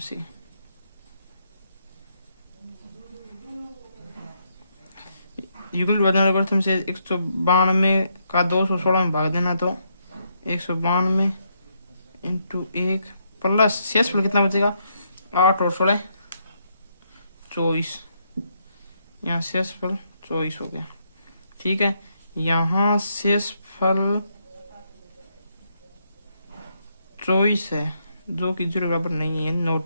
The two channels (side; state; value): both; inverted; correlation -0.77